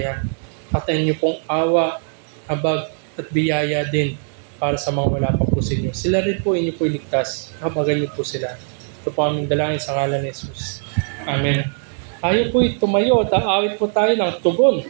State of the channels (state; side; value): silent; left; 56 dB below the other